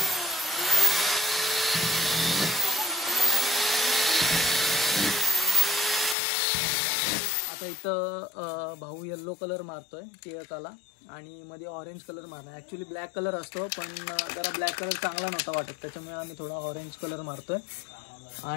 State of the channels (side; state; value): right; drops out; at 6.2 s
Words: इथं भाऊ येल्लो कलर मारतोय टिळकाला आणि मध्ये ऑरेंज कलर मारणार। ॲक्च्युली ब्लॅक कलर असतो, पण जरा ब्लॅक कलर चांगला नव्हता वाटत, त्याच्यामुळे आम्ही थोडा ऑरेंज कलर मारतोय।